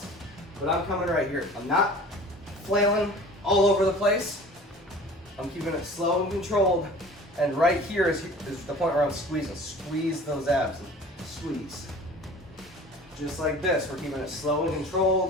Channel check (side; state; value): both; normal; correlation 0.43